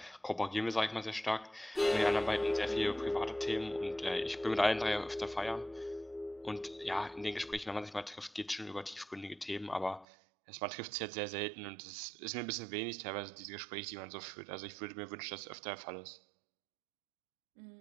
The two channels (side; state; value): left; drops out; at 10.1 s